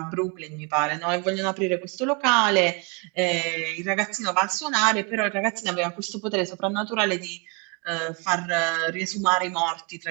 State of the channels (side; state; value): left; quieter; 31.9 dB